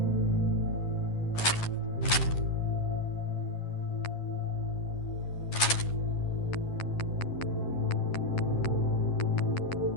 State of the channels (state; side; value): late; right; 11 ms